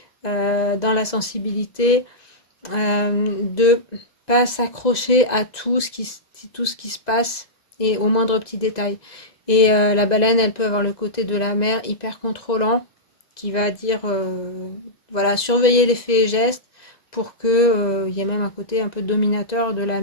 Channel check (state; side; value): late; right; 2.0 ms